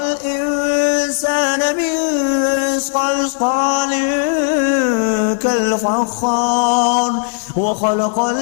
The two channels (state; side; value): silent; right; 67 dB below the other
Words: من صلصال كالفخار وخلق